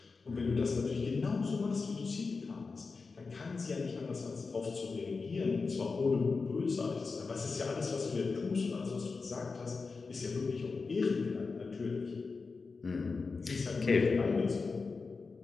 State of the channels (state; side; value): quieter; right; 4.4 dB